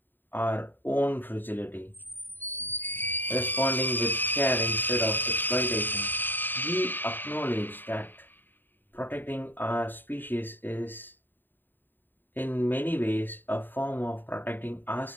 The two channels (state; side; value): late; right; 0.093 ms